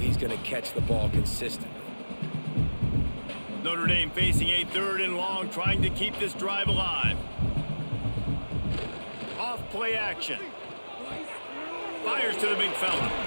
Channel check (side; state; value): both; inverted; correlation -1.00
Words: going to catch the ball consistently. Notre Dame facing a 3rd and long, trying to keep this drive alive. Off play action. Fires to the big fella.